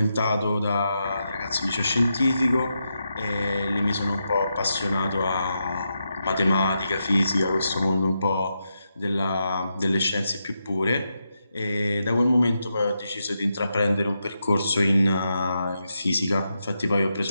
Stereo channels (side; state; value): both; inverted; correlation -0.85